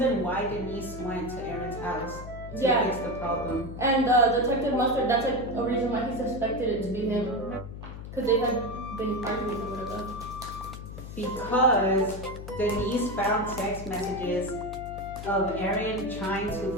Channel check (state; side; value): noise; left; hum, 10 dB below the sound